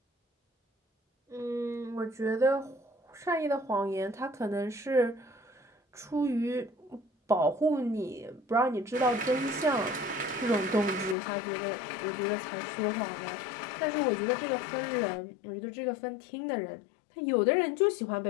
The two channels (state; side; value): drops out; right; at 11.2 s